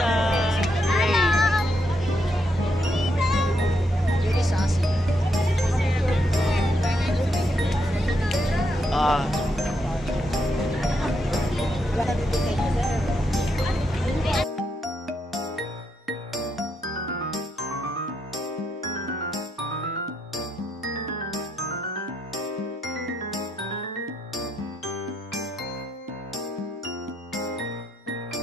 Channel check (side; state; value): both; normal; correlation 0.79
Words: Very sassy. Ah.